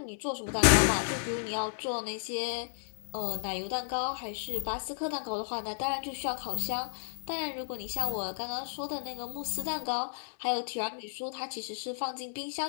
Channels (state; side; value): silent; right; digital silence